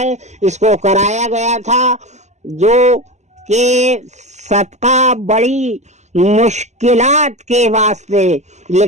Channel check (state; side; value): late; left; 0.33 ms